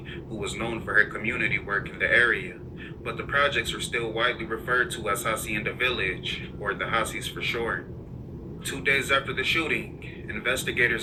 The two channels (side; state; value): both; identical; correlation 1.00